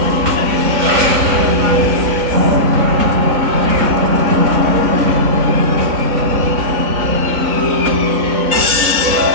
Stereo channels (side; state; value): left; late; 4.0 ms